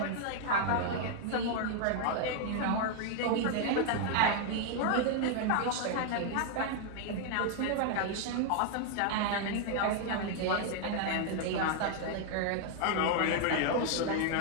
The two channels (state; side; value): different; both; correlation 0.00